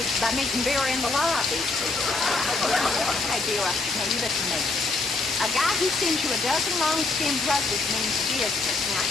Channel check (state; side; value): quieter; right; 3.6 dB